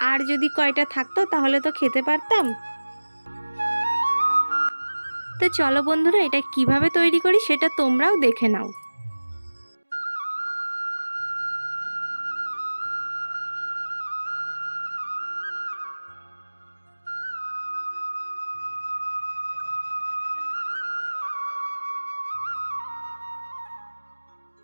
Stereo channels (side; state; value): both; inverted; correlation -1.00